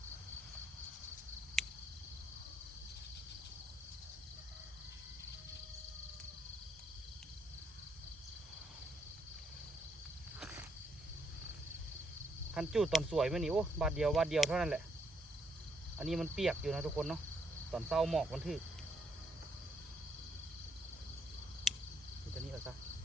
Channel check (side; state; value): both; normal; correlation 0.74